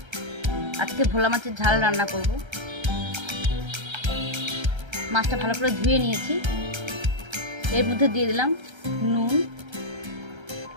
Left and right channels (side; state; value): left; late; 1.3 ms